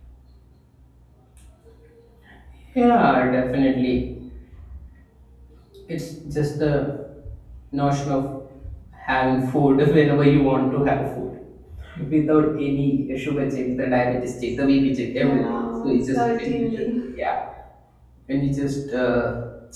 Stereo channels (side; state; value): both; identical; correlation 1.00